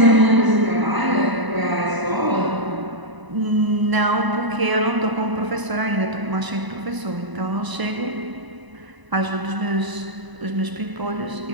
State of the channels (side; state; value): left; late; 1.0 ms